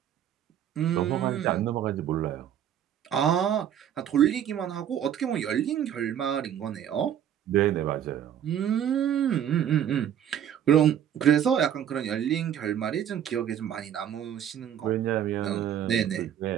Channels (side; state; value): left; quieter; 9.9 dB